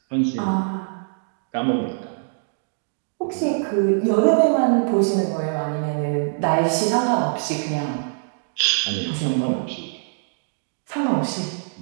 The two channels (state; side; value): silent; left; digital silence